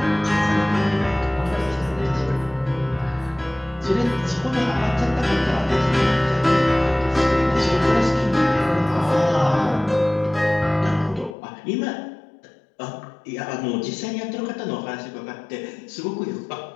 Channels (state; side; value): drops out; right; at 11.4 s